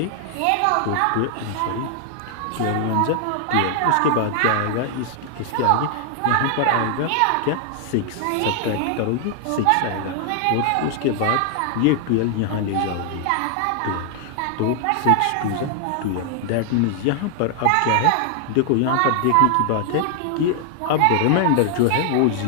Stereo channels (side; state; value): both; different; correlation 0.00